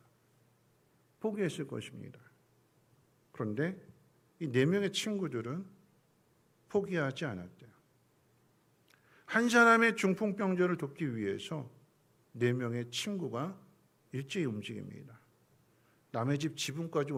포기했을 것입니다. 그런데 이 4명의 친구들은 포기하지 않았대요. 한 사람의 중풍병자를 돕기 위해서 4명의 친구가 일제히 움직입니다. 남의 집 지붕까지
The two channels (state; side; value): identical; both; correlation 1.00